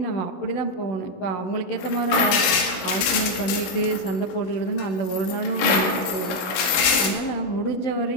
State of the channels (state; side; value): late; right; 17 ms